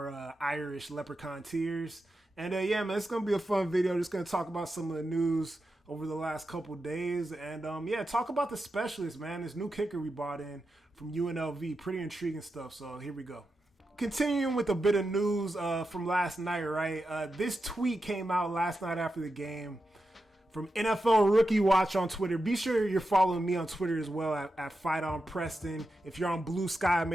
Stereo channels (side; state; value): both; normal; correlation 0.89